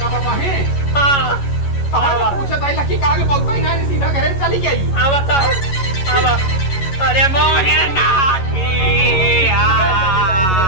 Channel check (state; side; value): late; right; 11 ms